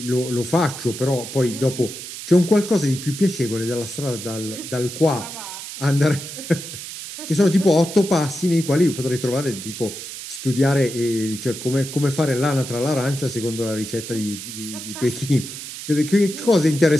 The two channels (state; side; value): noise; right; hiss, 10 dB below the sound